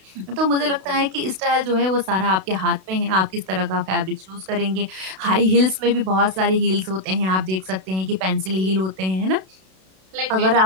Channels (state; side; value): late; left; 32 ms